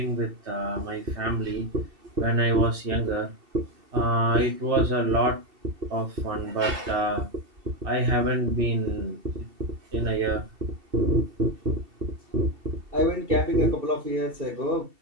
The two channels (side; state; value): left; late; 2.7 ms